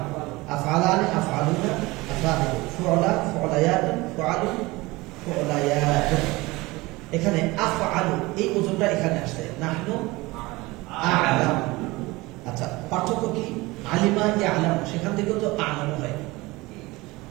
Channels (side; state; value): left; quieter; 21.7 dB